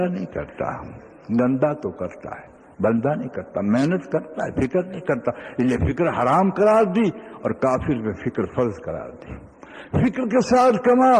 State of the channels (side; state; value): both; identical; correlation 1.00